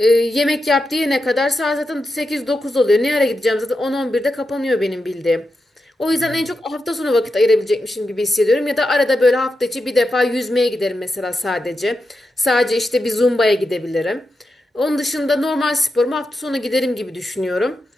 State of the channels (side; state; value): both; normal; correlation 0.88